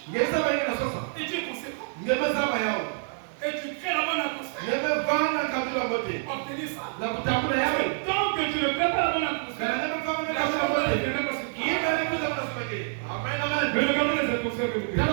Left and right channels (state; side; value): silent; left; 60 dB below the other